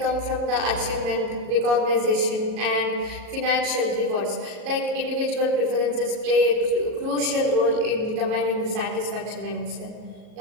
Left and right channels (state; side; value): late; left; 37 ms